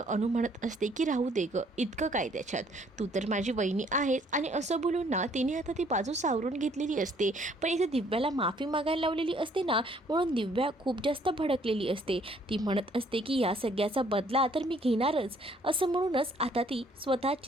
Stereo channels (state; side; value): normal; both; correlation 0.63